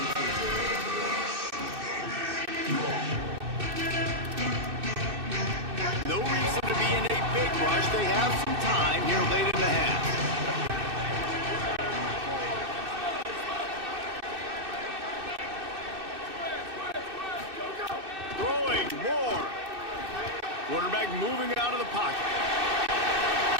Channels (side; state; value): left; late; 2.6 ms